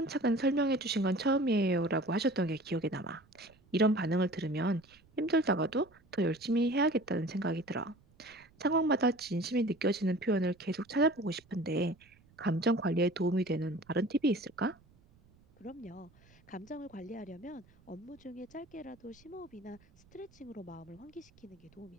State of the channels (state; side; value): noise; right; rumble, 29 dB below the sound